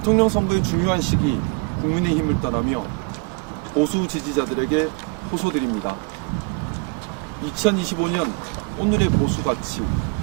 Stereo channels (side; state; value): left; quieter; 33.1 dB